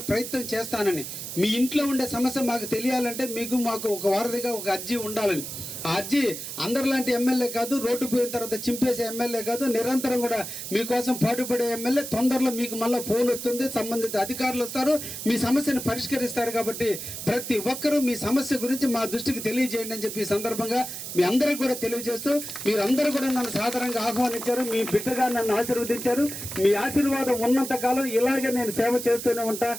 ప్రయత్నం చేస్తానని. మీ ఇంట్లో ఉండే సమస్య మాకు తెలియాలంటే మాకు ఒక వారధిగా ఒక అర్జీ ఉండాలని. ఆ అర్జీ అందరిలాంటి ఎమ్మెల్యే కాదు, రోడ్డు పోయిన తర్వాత చింపేసే ఎమ్మెల్యే కాదు, నిరంతరం కూడా మీకోసం పాటుపడే ఎమ్మెల్యే. తొందరలో మీకు మళ్ళీ ఫోన్ వస్తుంది, సంబంధిత అధికారులు వస్తారు, మీ సమస్యను పరిష్కరిస్తారు. కాబట్టి ప్రతి ఒక్కరూ మీ సమస్య గురించి మా దృష్టికి తెలియజేయండి అని చెప్పి ఈ సందర్భంగా మీ అందరికీ కూడా తెలియజేస్తూ, మీరందరూ కూడా నన్ను సాధారణంగా ఆహ్వానించారు, మీ బిడ్డగా నన్ను ఆశీర్వదించారు. మీ ఆశీర్వాదం ఉన్నంత కాలం ఇలాగే నేను సేవ చేస్తూనే ఉంటా,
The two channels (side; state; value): right; noise; hiss, 8 dB below the sound